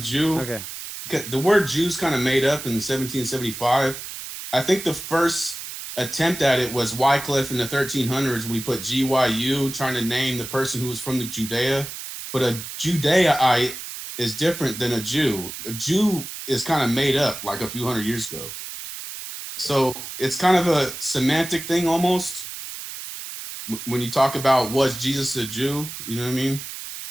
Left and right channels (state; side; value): noise; right; hiss, 9 dB below the sound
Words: Jew. Okay. the word Jews kind of made up in 1775. I think the first attempt at it was Wycliffe in the 1300s when he put GYU, trying to name the person who was from the Judea. But a Judaite is different than a Jew. A Jew is kind of made up like a few hundred years ago. So it's kind of a semantic thing almost. When you talk about was Jesus a Jew, you know what I mean?